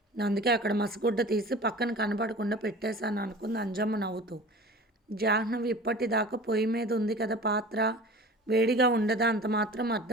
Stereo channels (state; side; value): normal; both; correlation 0.40